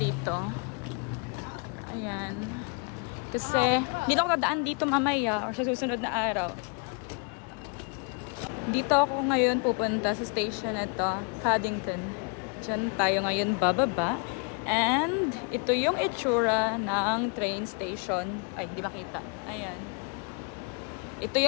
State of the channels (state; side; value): quieter; right; 35.9 dB